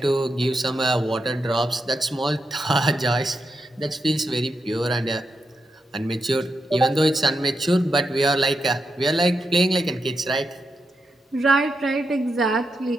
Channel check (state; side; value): normal; both; correlation 0.85